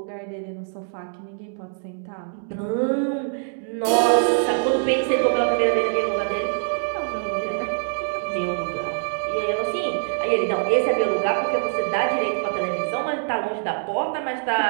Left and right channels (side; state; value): left; silent; digital silence